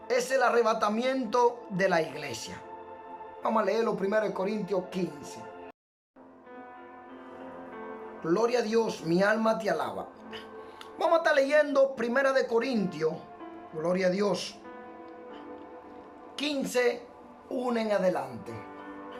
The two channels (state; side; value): identical; both; correlation 1.00